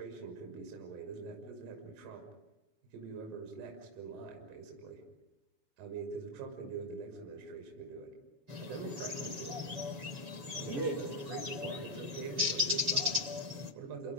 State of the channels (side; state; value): left; late; 7.1 ms